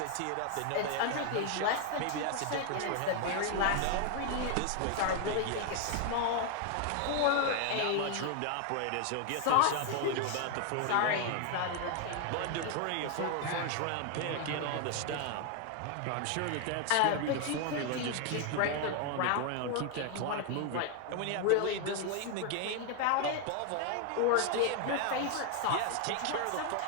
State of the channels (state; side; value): different; both; correlation 0.00